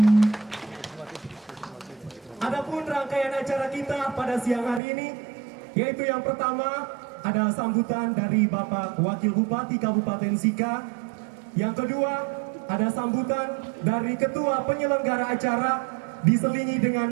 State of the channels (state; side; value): drops out; left; at 4.8 s